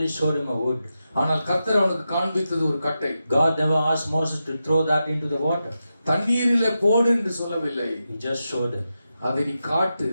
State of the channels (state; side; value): inverted; both; correlation -0.89